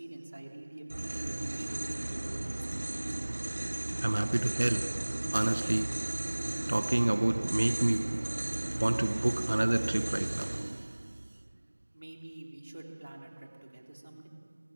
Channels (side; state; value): both; inverted; correlation -1.00